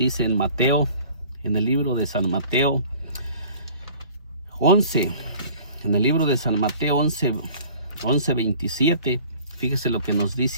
en Mateo, en el libro de San Mateo 11, en el libro de San Mateo 11:27, fíjese lo que nos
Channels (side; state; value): both; inverted; correlation -0.48